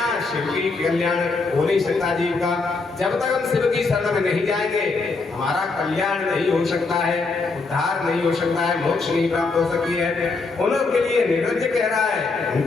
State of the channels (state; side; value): quieter; right; 4.0 dB